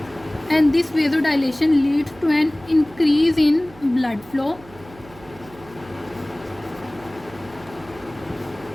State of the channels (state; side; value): noise; right; hum, 22 dB below the sound